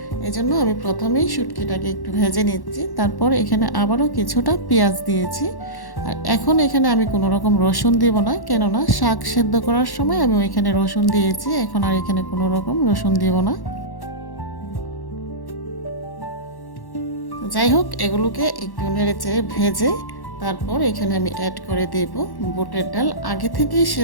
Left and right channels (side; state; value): right; late; 1.1 ms